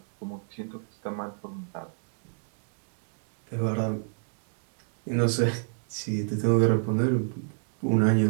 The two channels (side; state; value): left; silent; 58 dB below the other